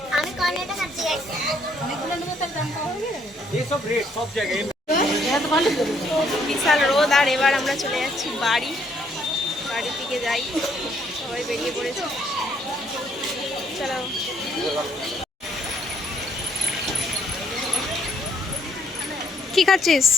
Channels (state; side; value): normal; both; correlation 0.68